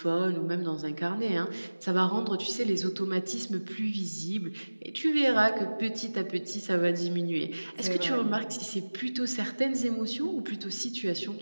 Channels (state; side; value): inverted; both; correlation -1.00